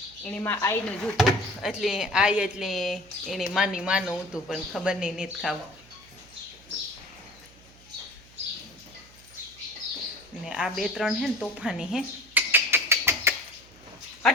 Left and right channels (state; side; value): noise; right; hum, 24 dB below the sound